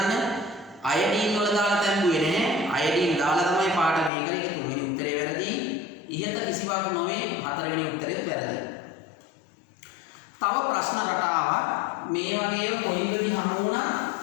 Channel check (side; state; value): right; drops out; at 4.1 s